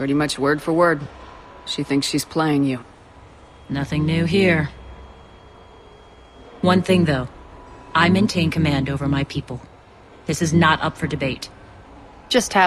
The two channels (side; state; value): both; identical; correlation 1.00